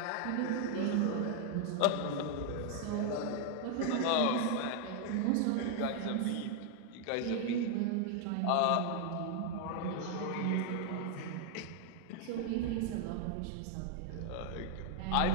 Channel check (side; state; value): both; different; correlation 0.00